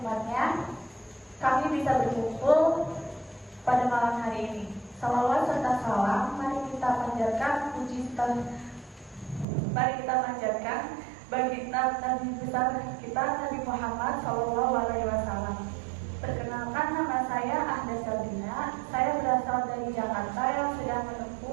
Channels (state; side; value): drops out; left; at 9.5 s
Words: kami bisa berkumpul pada malam hari ini. Salawat serta salam mari kita panjatkan bagi Nabi besar kita Nabi Muhammad SAW. Perkenalkan, nama saya Ahda Sabrina. Saya berasal dari Jakarta yang sedang